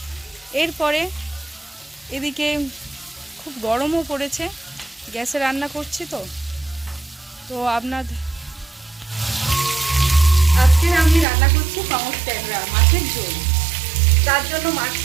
এরপরে এদিকে খুব গরমও পড়েছে, গ্যাসে রান্না করছি তো আজকে আমি রান্না করছি পাঙাশ ট্যাংরা মাছের ঝোল। তার জন্য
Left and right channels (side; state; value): left; drops out; at 11.2 s